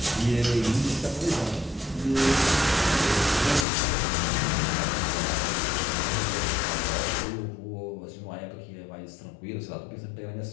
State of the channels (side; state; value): right; drops out; at 3.7 s